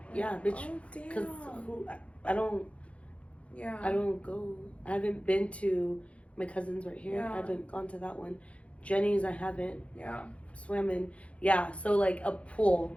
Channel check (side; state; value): right; late; 0.062 ms